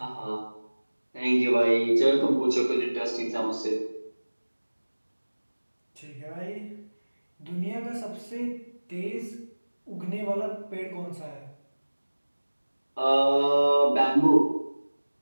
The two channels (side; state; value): both; inverted; correlation -1.00